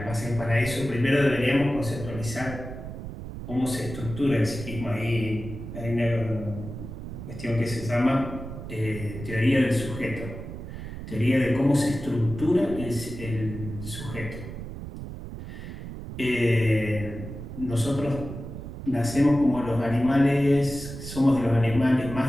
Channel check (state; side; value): noise; right; rumble, 10 dB below the sound